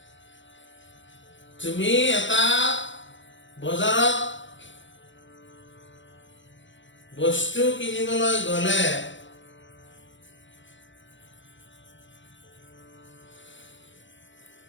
তুমি এটা বজাৰত বস্তু কিনিবলৈ গ'লে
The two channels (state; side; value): late; right; 0.54 ms